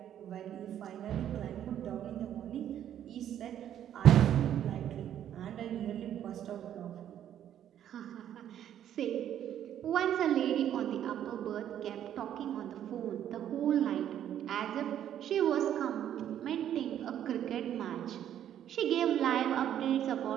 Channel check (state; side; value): quieter; left; 10.5 dB